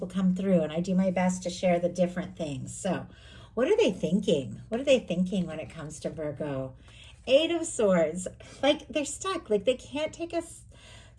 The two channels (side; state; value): both; identical; correlation 1.00